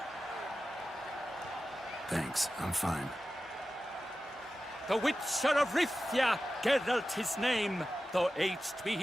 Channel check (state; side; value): normal; both; correlation 0.94